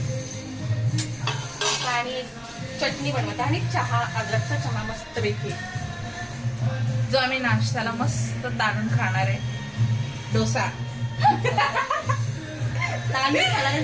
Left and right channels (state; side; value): identical; both; correlation 1.00